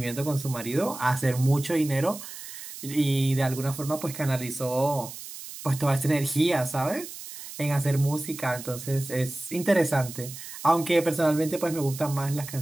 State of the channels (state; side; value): noise; right; hiss, 12 dB below the sound